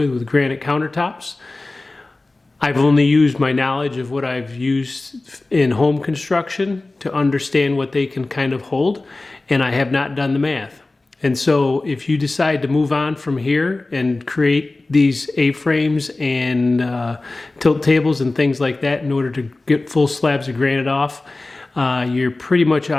granite countertops. I've only used my knowledge of what I've used in home construction to understand what they can kind of hold, and I have not done the math. And so if you decide to move on from here and create these A-frames and tilt tables and things like that in order to get full slabs of granite off, you're pretty much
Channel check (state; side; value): quieter; right; 3.1 dB